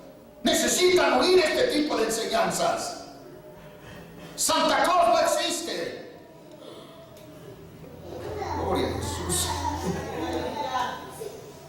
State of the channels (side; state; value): both; identical; correlation 1.00